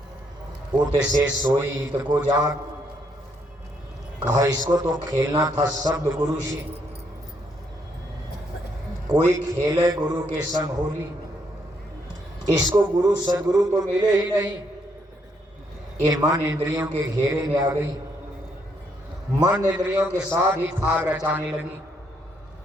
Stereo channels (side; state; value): both; normal; correlation 0.73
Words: उत से सोई इत को जाग। कहा इसको तो खेलना था शब्द गुरु से। कोई खेले गुरु के संग होली, इसको गुरु सदगुरु तो मिले ही नहीं। ये मन इंद्रियों के घेरे में आ गई, मन इंद्रियों के साथ ही भाग रचाने लगी।